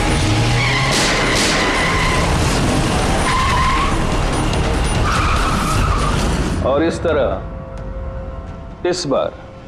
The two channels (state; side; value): identical; both; correlation 1.00